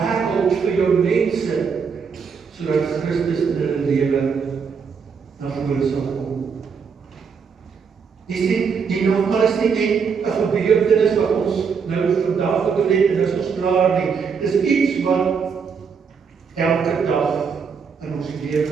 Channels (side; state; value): left; quieter; 6.0 dB